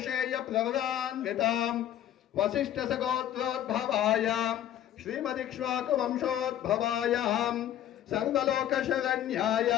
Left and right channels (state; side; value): quieter; right; 11.4 dB